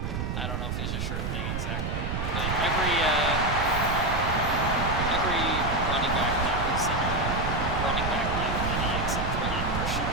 I don't know if he's a sure thing exactly, but every running back now is in a running back like mini except for like Christian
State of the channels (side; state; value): right; noise; rumble, 2 dB below the sound